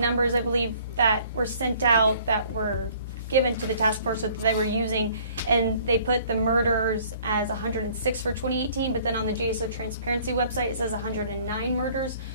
I believe, that were sent out that were given to the task force that they were using, and they put the murders as 106 for 2018, but then on the JSO transparency website it says 109 murders.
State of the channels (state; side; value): inverted; both; correlation -0.56